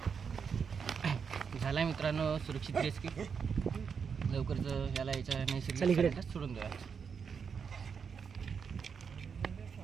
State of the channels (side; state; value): left; quieter; 6.3 dB